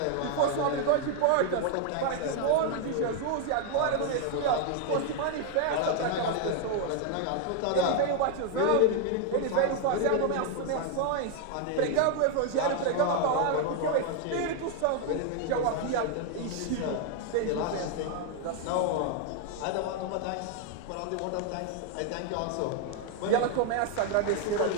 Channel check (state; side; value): different; both; correlation 0.00